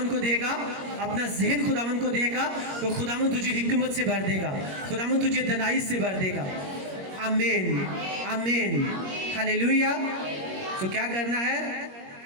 को देगा, अपना जहन खुदावन को देगा, तो खुदावन तुझे हिकमत से भर देगा, खुदावन तुझे दनाई से भर देगा। आमीन आमीन हालेलुया। तो क्या करना है?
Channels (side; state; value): left; late; 21 ms